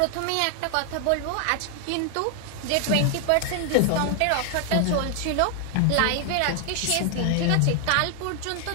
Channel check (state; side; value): different; both; correlation 0.00